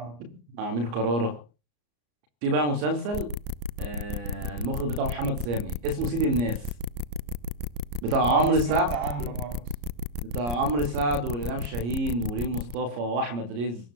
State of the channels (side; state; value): left; late; 34 ms